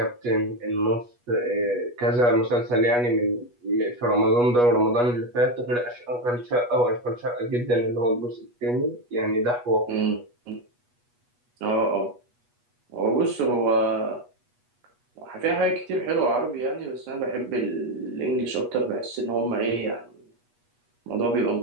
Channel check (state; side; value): late; left; 8.3 ms